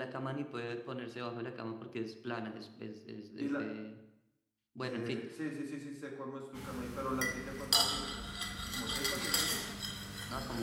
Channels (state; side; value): identical; both; correlation 1.00